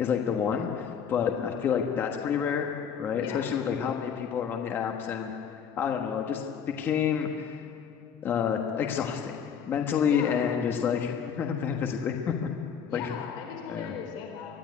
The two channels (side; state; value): right; quieter; 7.3 dB